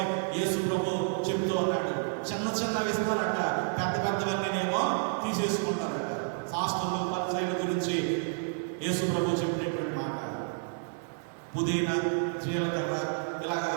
యేసు ప్రభు చెప్తూ ఉన్నాడు, చిన్న చిన్నవి ఇస్తారట, పెద్ద పెద్దవన్నీనేమో తీసేసుకుంటారట. శాస్త్రులు పరిచర్యల గురించి యేసు ప్రభు చెప్పినటువంటి మాట, పుదీనా, జీలకర్ర, ఇలాగా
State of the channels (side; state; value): left; silent; digital silence